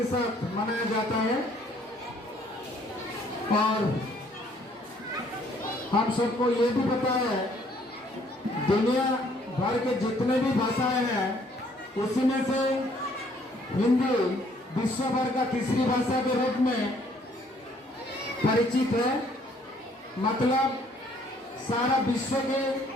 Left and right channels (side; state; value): both; normal; correlation 0.63